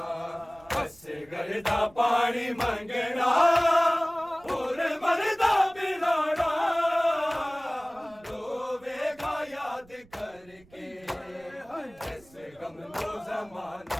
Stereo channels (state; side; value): noise; right; rumble, 27 dB below the sound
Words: असगर दा पानी मंगना, और मरदा पिलाना रोवेगा याद करके ऐसे गम नू